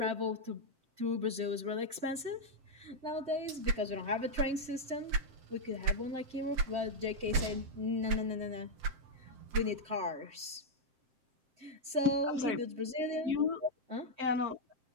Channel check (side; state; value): left; late; 7.6 ms